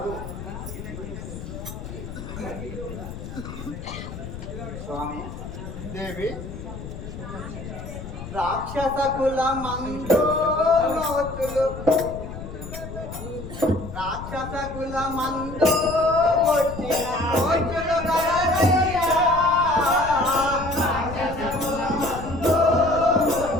స్వామి దేవి రాక్షస కుల మందోతులు రాక్షస కుల మందో కొట్టిన మోచులు గలరయ్యా.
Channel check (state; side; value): noise; left; rumble, 10 dB below the sound